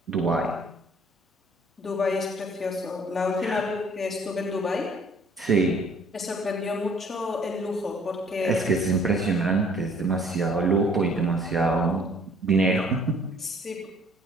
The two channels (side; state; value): both; normal; correlation 0.57